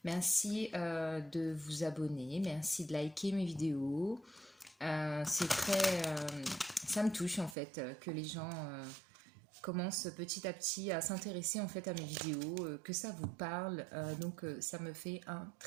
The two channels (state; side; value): drops out; left; at 7.6 s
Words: Merci de vous abonner, merci de liker mes vidéos. C'est ça me touche en fait que les gens commencent petit à petit à s'intéresser en fait à mes vidéos, que ça vous parle. Donc ça me fait un